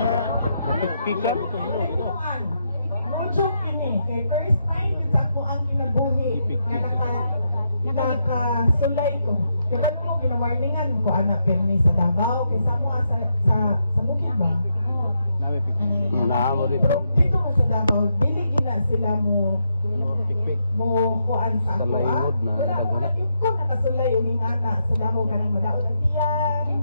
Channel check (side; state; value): both; inverted; correlation -0.81